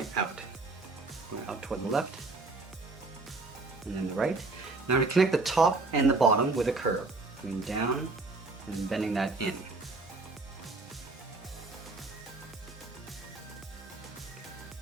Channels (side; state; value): left; quieter; 3.5 dB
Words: out. Going up toward the left, and then the right. Now we're going to connect the top and the bottom with a curve, coming down and bending that in.